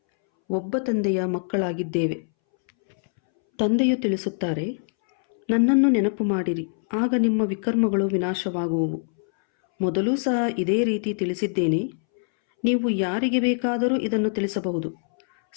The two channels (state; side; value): silent; right; 63 dB below the other